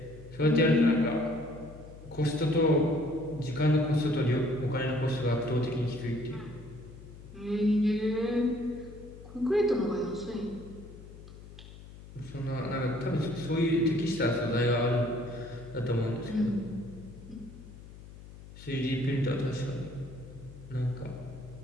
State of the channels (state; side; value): noise; left; hum, 17 dB below the sound